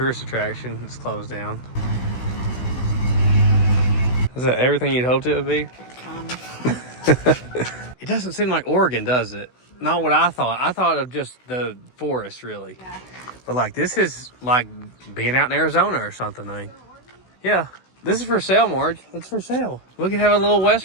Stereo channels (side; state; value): right; late; 16 ms